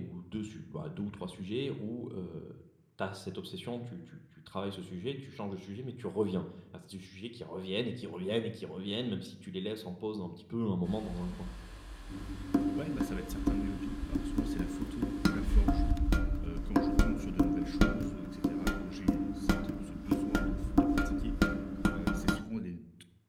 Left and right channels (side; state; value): both; identical; correlation 1.00